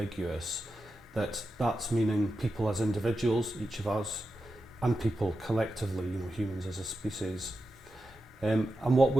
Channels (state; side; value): normal; both; correlation 0.90